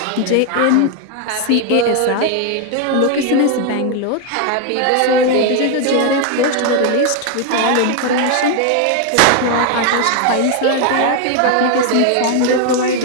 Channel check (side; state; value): both; different; correlation 0.01